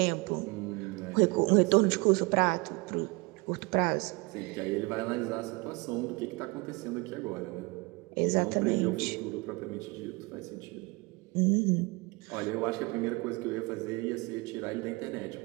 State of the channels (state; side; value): quieter; left; 26.2 dB